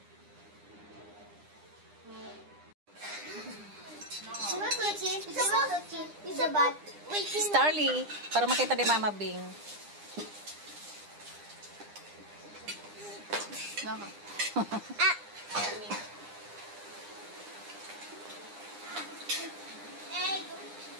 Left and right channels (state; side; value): late; left; 9.9 ms